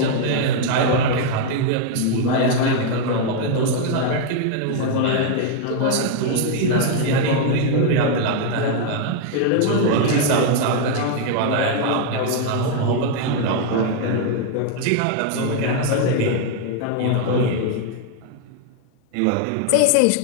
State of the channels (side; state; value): both; different; correlation 0.00